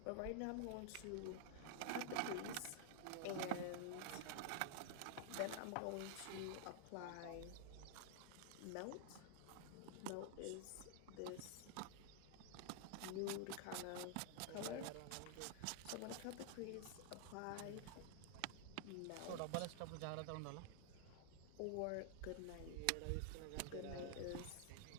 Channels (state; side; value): different; both; correlation 0.00